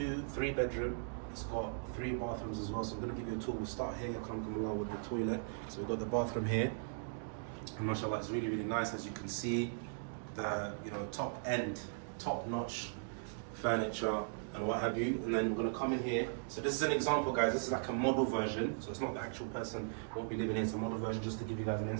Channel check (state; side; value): silent; left; digital silence